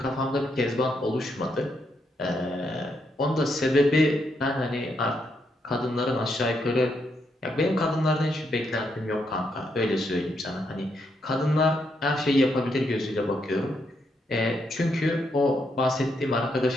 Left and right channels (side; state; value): both; normal; correlation 0.78